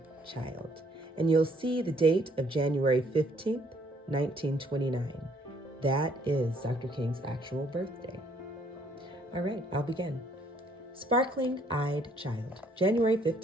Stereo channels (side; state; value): both; normal; correlation 0.65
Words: Child. And you'll see the date of January 15th, 1929. That is Dr. King's actual birthday. All right, I'll begin. Sparkling Eyed Child, January